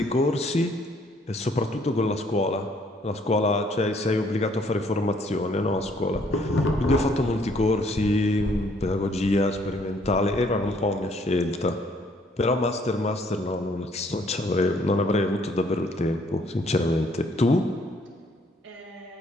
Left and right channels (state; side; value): normal; both; correlation 0.64